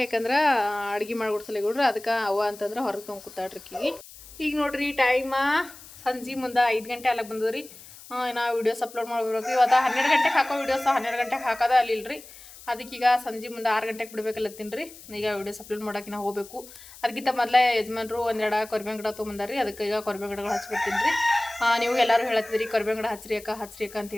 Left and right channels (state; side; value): noise; left; hiss, 18 dB below the sound